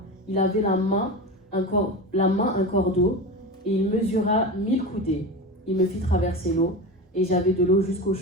il avait la main un corps d'eau, et il mesura 1000 coudées. Il me fit traverser l'eau, et j'avais de l'eau jusqu'aux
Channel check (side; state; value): both; normal; correlation 0.25